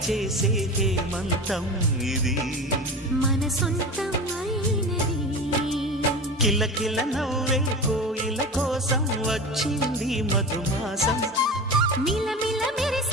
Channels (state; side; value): normal; both; correlation 0.30